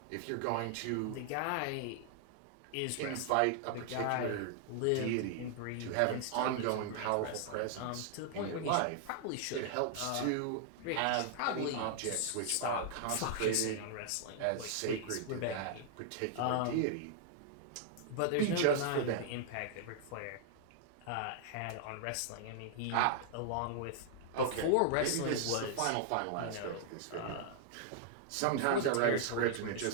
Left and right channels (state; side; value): different; both; correlation -0.01